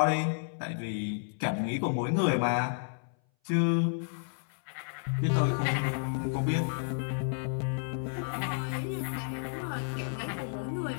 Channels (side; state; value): right; silent; 57 dB below the other